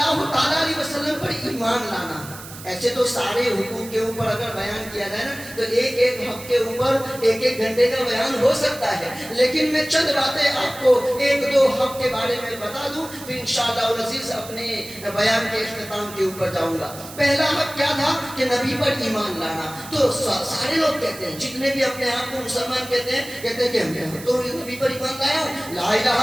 تعالیٰ علیہ وسلم پر ایمان لانا، ایسے تو سارے حقوق کے اوپر اگر بیان کیا جائے نا تو ایک ایک حق کے اوپر ایک ایک گھنٹے کا بیان ہو سکتا ہے، لیکن میں چند باتیں آپ کو ایک دو حق کے بارے میں بتا دوں، پھر انشاءاللہ العزیز اپنے بیان کے اختتام کے اوپر جاؤں گا. پہلا حق کیا تھا کہ نبی پر ایمان لانا. تو سارے لوگ کہتے ہیں، جتنے بھی اپنے آپ کو مسلمان کہتے ہیں کہ ہم تو نبی پر ایمان لایا ہوں، لا الہ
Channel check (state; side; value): noise; right; hiss, 15 dB below the sound